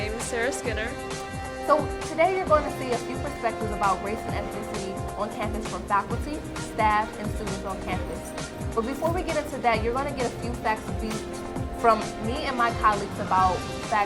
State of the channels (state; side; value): identical; both; correlation 1.00